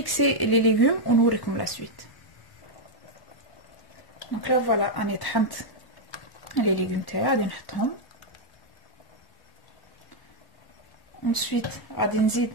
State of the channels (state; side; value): late; right; 1.1 ms